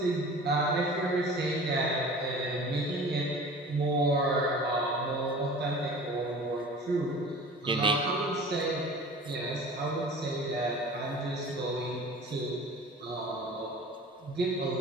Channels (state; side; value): normal; both; correlation 0.41